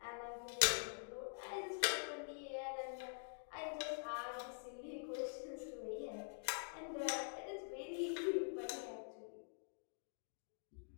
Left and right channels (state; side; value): silent; right; digital silence